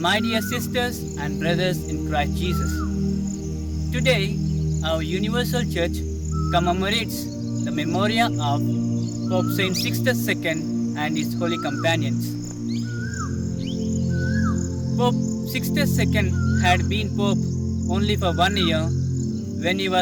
dear sisters and brothers in Christ Jesus, today our Universal Church commemorates the memoria of Pope Saint Sixtus II and his holy companions. Pope Sixtus II had been Pope only for 1 year when he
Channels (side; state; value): both; identical; correlation 1.00